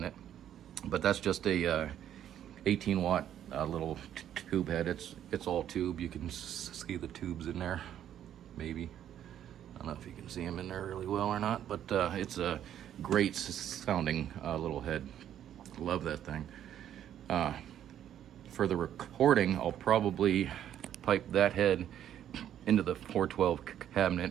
But that's just a 18 watt little tube head. It's all tube. You can see the tubes in there, maybe. I don't know if you can see them in there really well or not, but it's a great sounding little head. Love that thing. For the recording, I'll probably pipe that head into the 412 cabinet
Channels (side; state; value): left; quieter; 10.6 dB